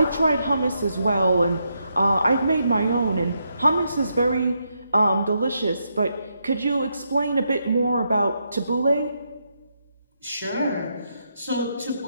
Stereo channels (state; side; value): inverted; both; correlation -0.81